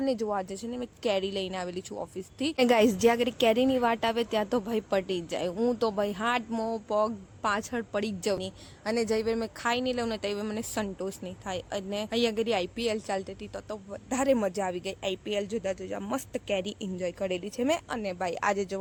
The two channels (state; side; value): identical; both; correlation 1.00